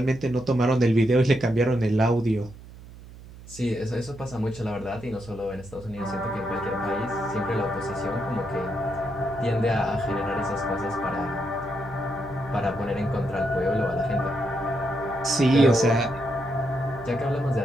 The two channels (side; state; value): right; noise; hum, 17 dB below the sound